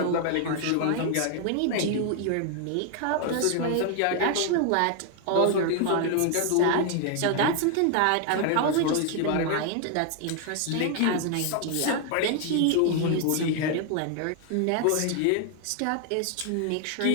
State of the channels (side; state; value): both; different; correlation 0.00